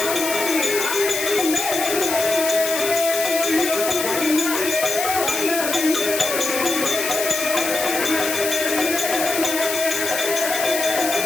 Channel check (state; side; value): noise; left; hiss, 3 dB below the sound